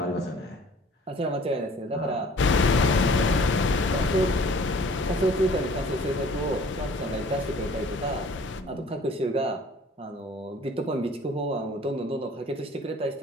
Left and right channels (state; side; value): normal; both; correlation 0.52